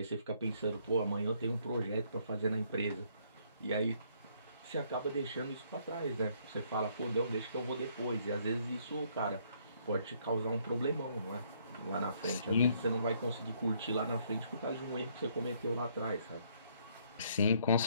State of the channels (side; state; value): both; inverted; correlation -0.67